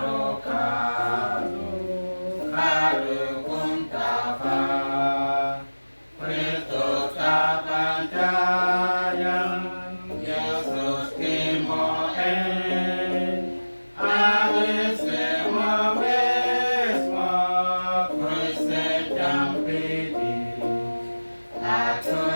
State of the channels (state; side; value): inverted; both; correlation -1.00